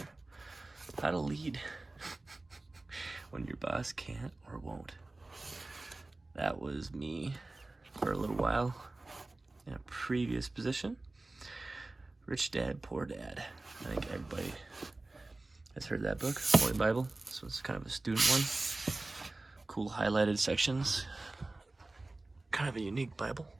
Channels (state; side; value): quieter; left; 3.0 dB